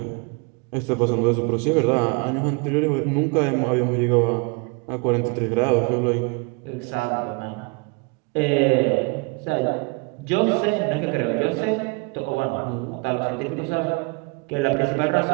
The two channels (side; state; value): left; quieter; 30.5 dB